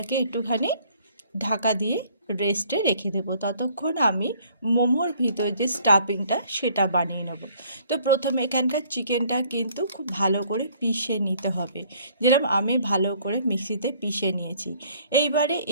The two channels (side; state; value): both; inverted; correlation -0.60